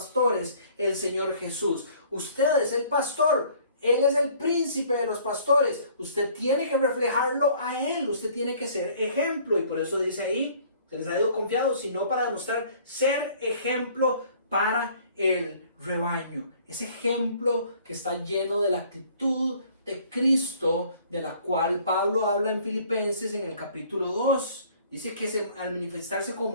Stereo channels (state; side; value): inverted; both; correlation -0.56